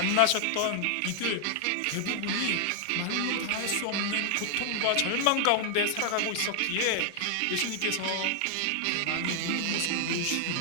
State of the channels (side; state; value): both; different; correlation 0.00